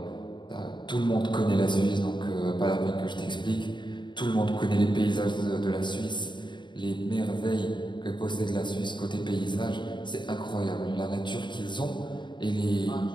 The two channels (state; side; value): late; right; 0.22 ms